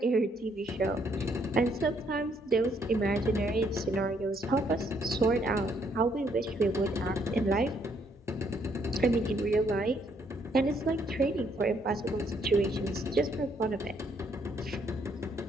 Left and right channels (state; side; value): normal; both; correlation 0.70